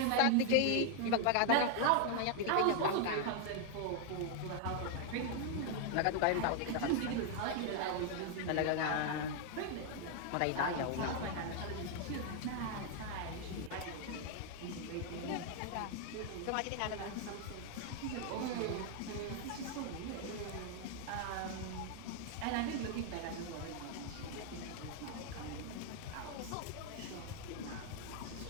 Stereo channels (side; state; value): both; different; correlation 0.00